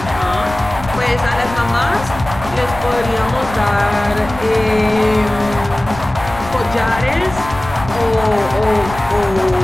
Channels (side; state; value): left; noise; rumble, 13 dB below the sound